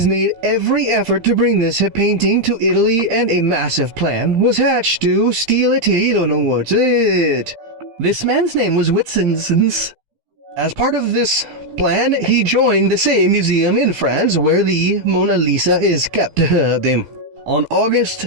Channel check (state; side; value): late; left; 15 ms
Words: made every effort to bring this painting to Italy, and a massive plan was hatched to steal it. This man's name was Whitson. As part of this plan, he joined the same museum in France where the Mona Lisa is kept. On August